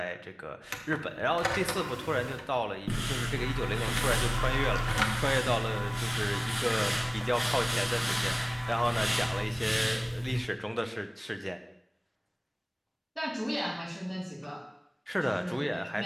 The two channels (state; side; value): identical; both; correlation 1.00